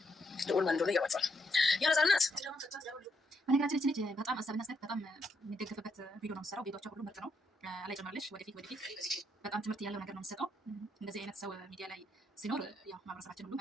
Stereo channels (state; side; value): normal; both; correlation 0.77